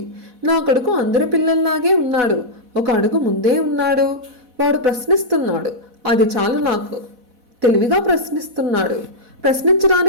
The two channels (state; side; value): late; left; 4.1 ms